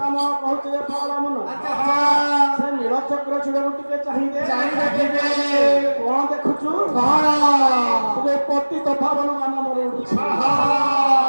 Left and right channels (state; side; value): inverted; both; correlation -1.00